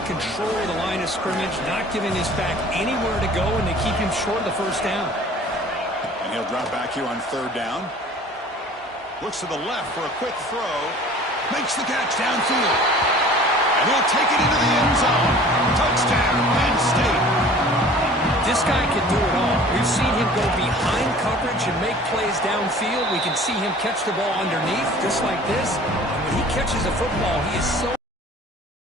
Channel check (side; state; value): both; normal; correlation 0.47